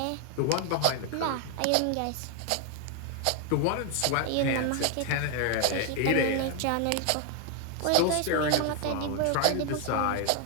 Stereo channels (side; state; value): both; different; correlation 0.01